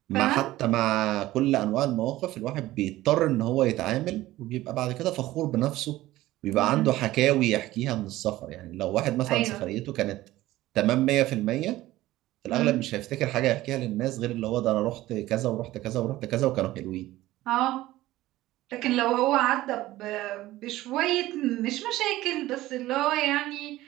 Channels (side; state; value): left; quieter; 16.4 dB